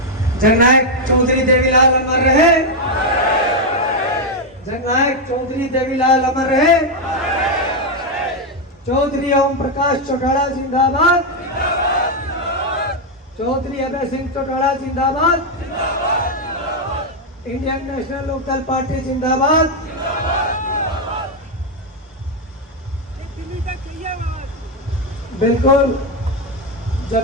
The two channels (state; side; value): normal; both; correlation 0.02